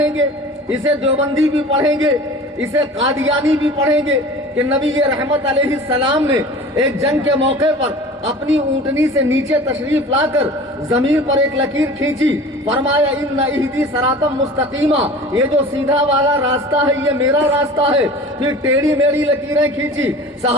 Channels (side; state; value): both; normal; correlation 0.40